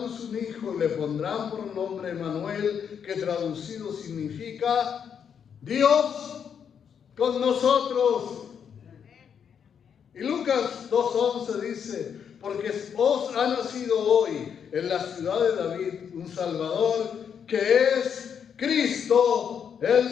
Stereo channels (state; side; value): quieter; right; 7.6 dB